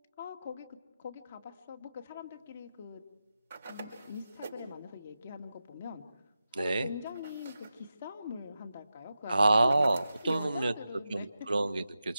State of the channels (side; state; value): both; inverted; correlation -0.91